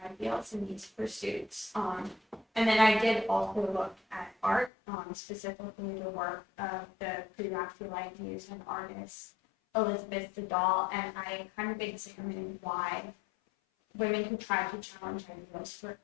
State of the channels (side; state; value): right; drops out; at 4.7 s